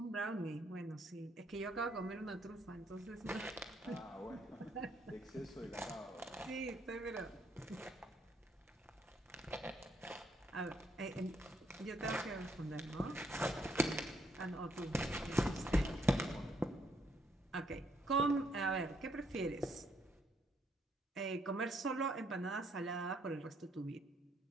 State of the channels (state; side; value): normal; both; correlation 0.71